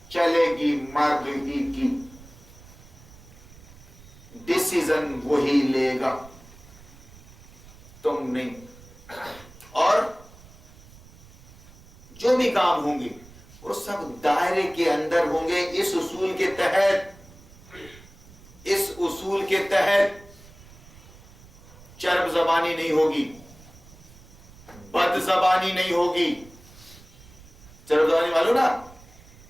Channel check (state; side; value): noise; right; rumble, 22 dB below the sound